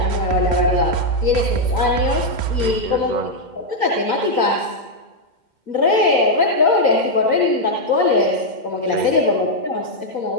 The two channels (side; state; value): left; late; 2.1 ms